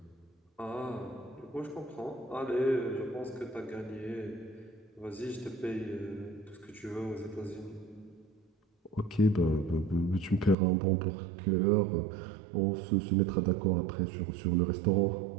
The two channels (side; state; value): left; drops out; at 10.6 s